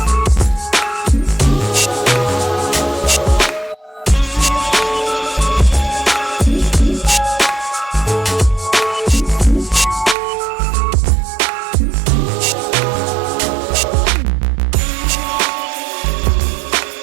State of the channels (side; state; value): left; drops out; at 10.2 s